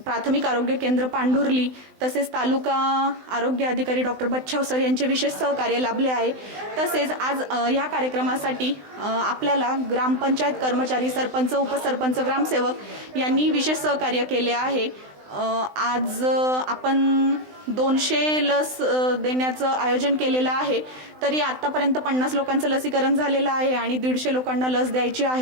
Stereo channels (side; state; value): left; late; 20 ms